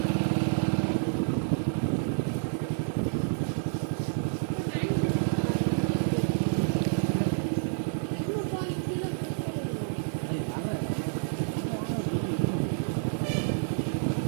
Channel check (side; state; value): left; silent; digital silence